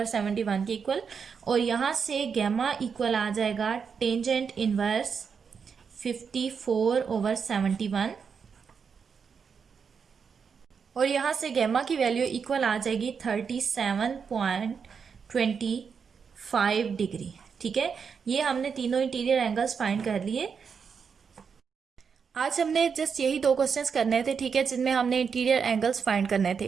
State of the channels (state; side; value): quieter; left; 6.2 dB